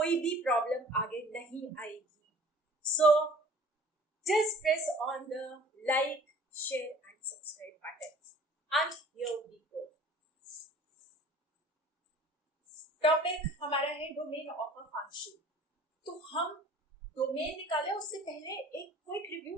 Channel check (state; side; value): normal; both; correlation 0.47